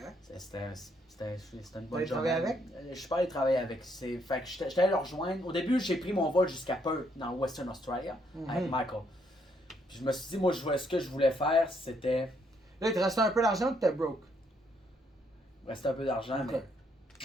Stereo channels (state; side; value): normal; both; correlation 0.72